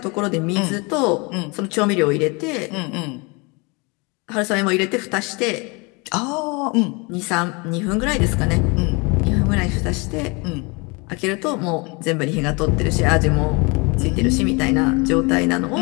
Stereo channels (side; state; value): right; quieter; 28.9 dB